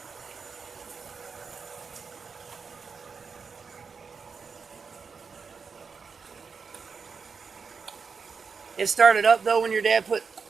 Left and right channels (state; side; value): quieter; left; 5.5 dB